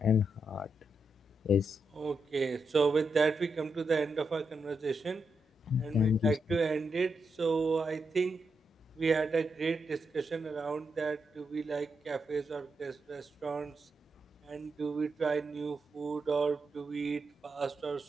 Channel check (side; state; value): both; normal; correlation 0.83